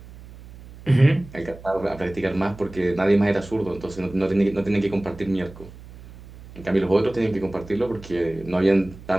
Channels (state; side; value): noise; right; hum, 18 dB below the sound